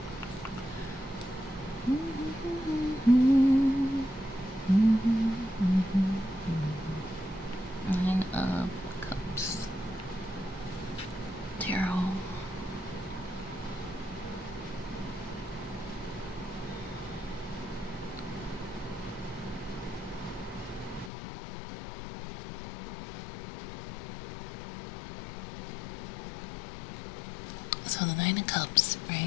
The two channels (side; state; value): right; drops out; at 21.1 s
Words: Nine of Cups. Tarot. So the Nine of Cups,